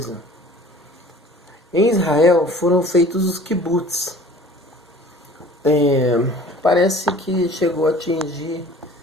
em Israel foram feitos os kibbutz. Parece que chegou a atingir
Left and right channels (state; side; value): normal; both; correlation 0.47